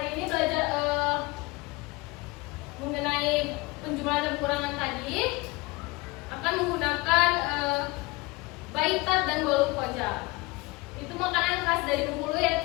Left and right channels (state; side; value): quieter; right; 23.9 dB